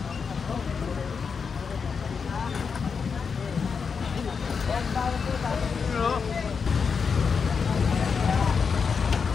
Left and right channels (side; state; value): right; quieter; 5.8 dB